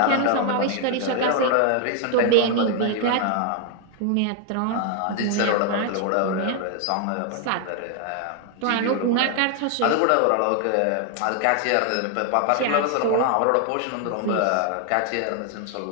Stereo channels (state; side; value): different; both; correlation 0.00